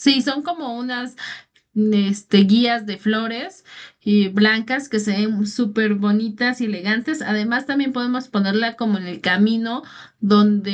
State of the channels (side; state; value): both; identical; correlation 1.00